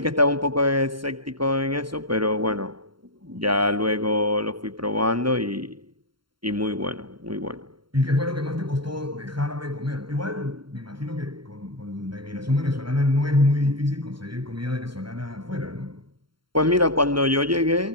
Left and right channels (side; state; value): left; late; 0.73 ms